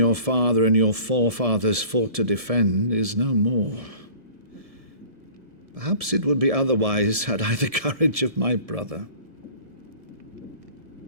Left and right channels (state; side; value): late; left; 1.7 ms